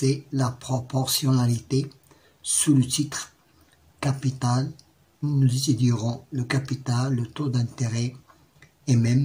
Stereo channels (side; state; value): both; identical; correlation 1.00